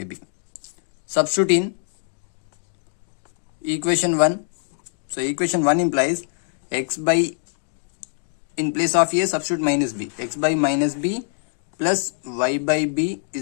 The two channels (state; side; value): silent; right; digital silence